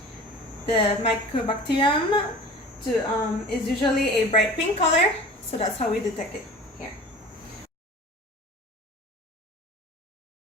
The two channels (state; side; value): normal; both; correlation 0.40